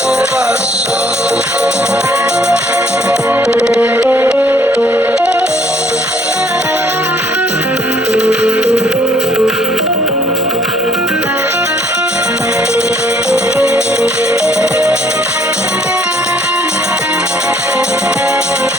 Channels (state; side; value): normal; both; correlation 0.63